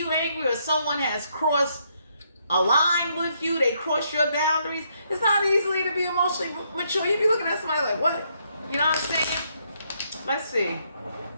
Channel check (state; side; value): inverted; both; correlation -0.74